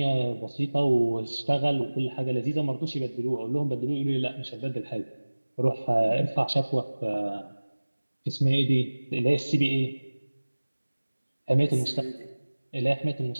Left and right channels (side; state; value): both; inverted; correlation -1.00